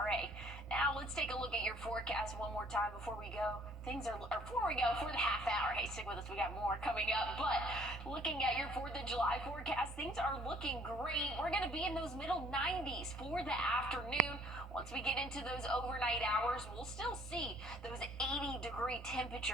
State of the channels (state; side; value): normal; both; correlation 0.59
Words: Now, let's take a look at your forecast one more time before we go. For the half hour. Hey, stick with us. We got more coming up. But looking at your 4th of July forecast, things are looking great. We're going to be in those middle 90s for the afternoon. Once we get into those overnight hours, we'll still see those 80-degree